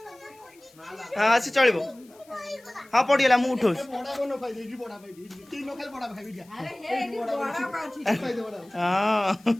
ହଁ ସେ ଚଳିବ। ହଁ ପଡ଼ିଗଲା ମୁଁ ଉଠଉଛି।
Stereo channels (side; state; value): left; noise; hiss, 28 dB below the sound